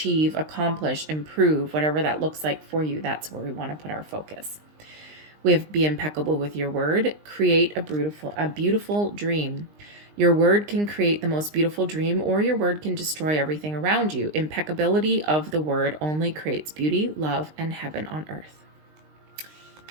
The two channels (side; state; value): left; late; 20 ms